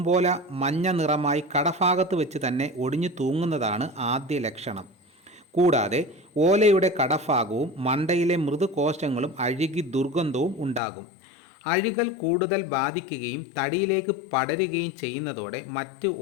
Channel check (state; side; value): drops out; right; at 10.8 s